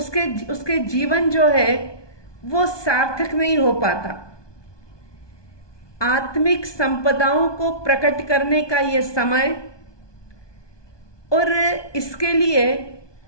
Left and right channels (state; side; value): late; right; 1.2 ms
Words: जीवन जो है वो सार्थक नहीं हो पाता। आत्मिक संपदाओं को प्रकट करने का ये समय, और इसके लिए